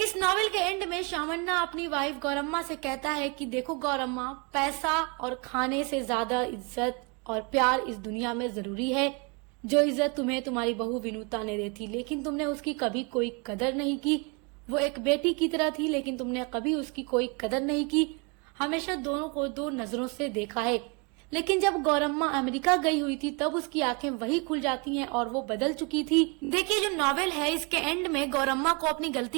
नॉवेल के एंड में शामन्ना अपनी वाइफ गौरम्मा से कहता है कि देखो गौरम्मा, पैसा और खाने से ज्यादा इज्जत और प्यार इस दुनिया में जरूरी है। जो इज्जत तुम्हें तुम्हारी बहू विनुता ने दी थी, लेकिन तुमने उसकी कभी कोई कदर नहीं की। वो एक बेटी की तरह थी, लेकिन तुमने कभी उसकी कोई कदर नहीं की, हमेशा दोनों को दो नजरों से देखा है। लेकिन जब गौरम्मा अमेरिका गई हुई थी तब उसकी आंखें वही खुल जाती हैं और वो बदल चुकी थी। देखिए, जो नॉवेल है इसके एंड में गौरम्मा को अपनी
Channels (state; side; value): quieter; left; 32.1 dB